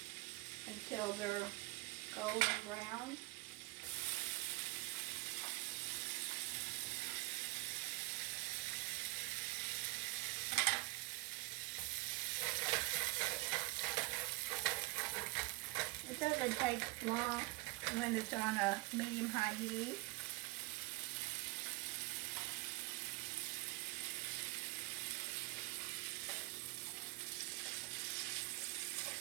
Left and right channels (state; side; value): quieter; left; 24.3 dB